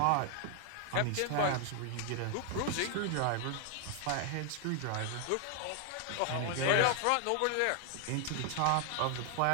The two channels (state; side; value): different; both; correlation 0.00